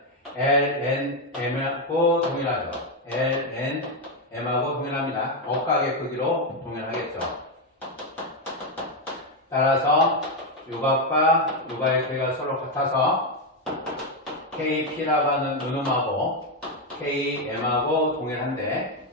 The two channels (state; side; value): normal; both; correlation 0.05